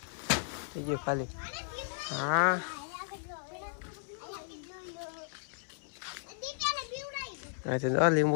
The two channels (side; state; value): right; silent; 55 dB below the other